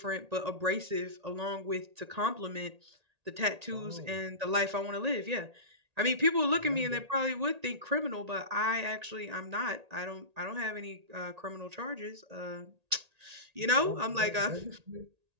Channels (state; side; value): late; left; 1.8 ms